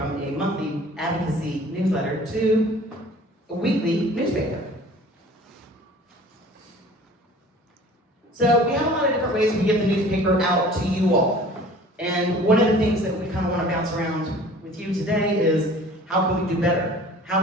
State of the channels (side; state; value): both; normal; correlation 0.47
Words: a monthly advocacy newsletter to a weekly newspaper. So we have a lot of different ways we get the newspaper out to you all. And one of the things that we kind of want to bounce around with you today is how can we do better?